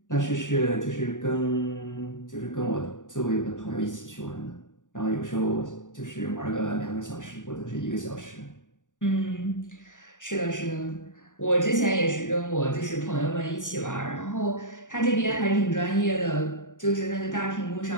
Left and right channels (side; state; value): right; late; 0.87 ms